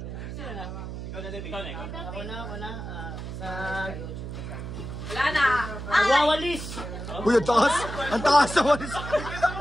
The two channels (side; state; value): right; noise; hum, 8 dB below the sound